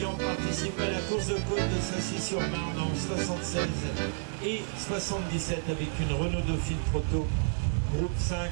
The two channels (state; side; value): silent; left; digital silence